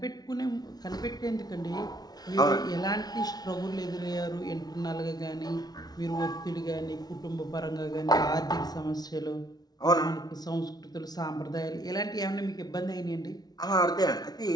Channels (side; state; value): right; late; 0.19 ms